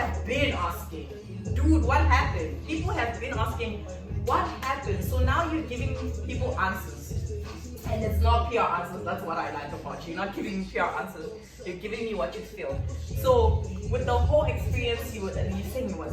been asking, dude, what happened? People have been asking, what happened? So now you're giving people answers. And it's not pure answers, that's what I like about you. You're not giving me pure answers, you're giving me what you feel. So with the whole experience, you saying it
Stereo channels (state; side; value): identical; both; correlation 1.00